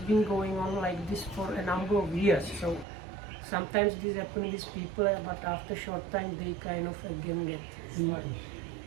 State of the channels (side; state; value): left; drops out; at 2.9 s